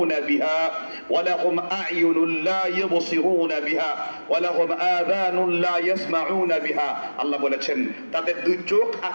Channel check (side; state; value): both; inverted; correlation -1.00